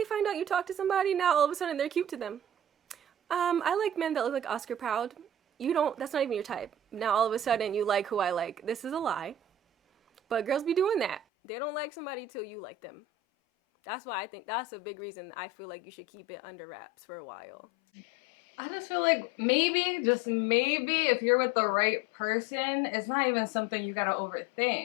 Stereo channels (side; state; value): right; drops out; at 11.2 s